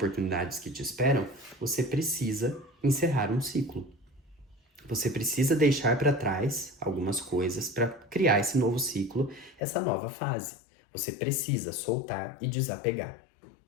que te esperam, você precisa encerrar um ciclo. Você precisa deixar para trás algumas coisas para criar esse novo ciclo, essa nova fase. Você precisa soltar e desapegar,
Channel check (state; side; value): drops out; right; at 9.6 s